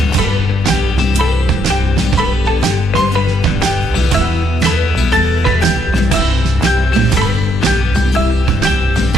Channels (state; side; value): normal; both; correlation 0.74